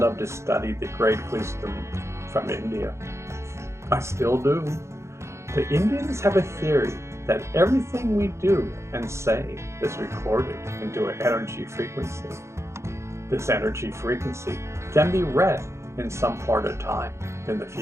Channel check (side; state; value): left; late; 0.13 ms